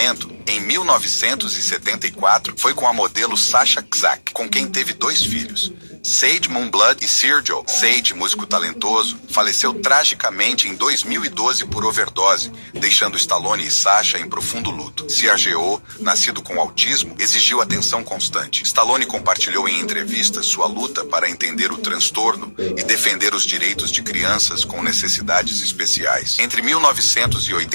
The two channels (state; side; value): inverted; both; correlation -1.00